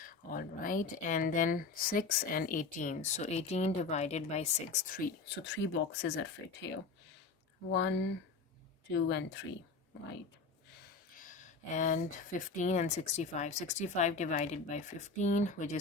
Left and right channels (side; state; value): right; quieter; 4.2 dB